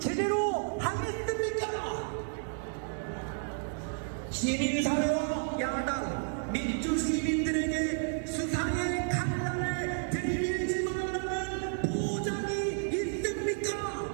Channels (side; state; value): left; silent; 57 dB below the other